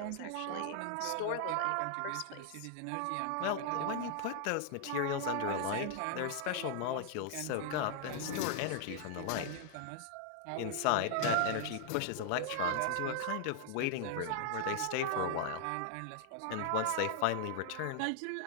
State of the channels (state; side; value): different; both; correlation 0.00